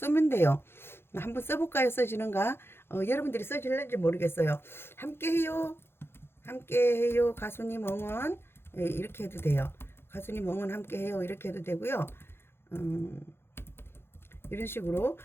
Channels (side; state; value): right; late; 0.11 ms